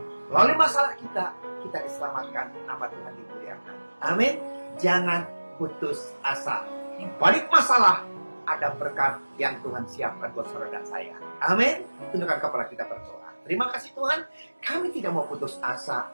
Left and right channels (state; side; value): inverted; both; correlation -1.00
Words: Melalui masalah kita diselamatkan, nama Tuhan dimuliakan. Amin. Jangan putus asa. Di balik masalah ada berkat yang Tuhan siapkan buat saudara dan saya. Amin. Tundukkan kepala kita berdoa. Terima kasih Tuhan. Kami tidak mau putus